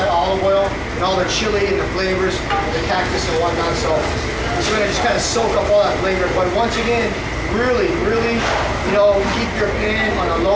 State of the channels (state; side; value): identical; both; correlation 1.00